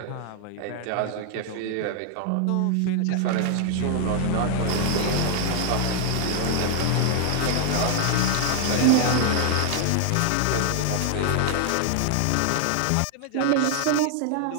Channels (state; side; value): different; both; correlation 0.00